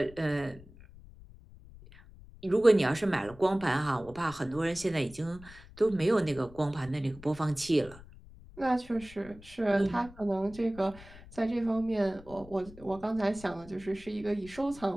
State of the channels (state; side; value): noise; left; rumble, 20 dB below the sound